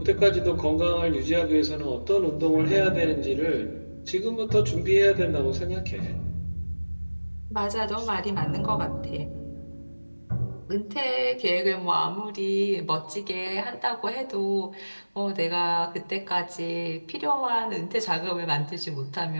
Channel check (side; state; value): both; inverted; correlation -1.00